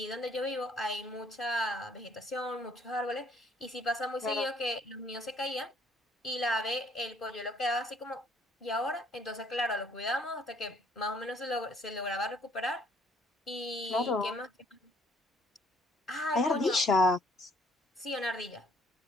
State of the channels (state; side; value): normal; both; correlation 0.62